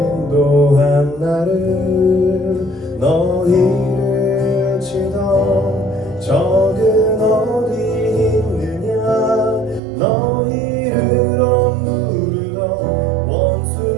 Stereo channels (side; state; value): left; drops out; at 9.8 s